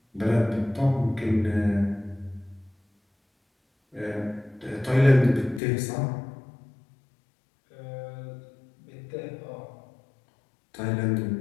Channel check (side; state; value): right; drops out; at 5.6 s